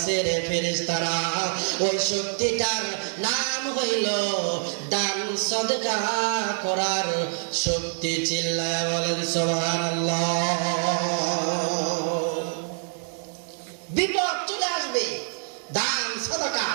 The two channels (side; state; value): left; silent; 57 dB below the other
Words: রে ফেরেশতারা। ওই শক্তিটার নাম হইল দান সদকা করার শক্তি। চিল্লায় বলেন সুবহানাল্লাহ। বিপদ চলে আসবে, দান সদকা